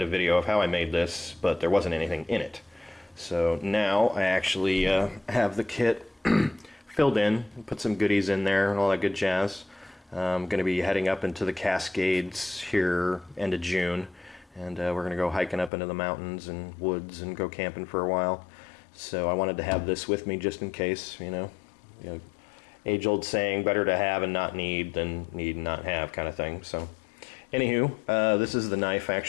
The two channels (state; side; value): drops out; right; at 15.7 s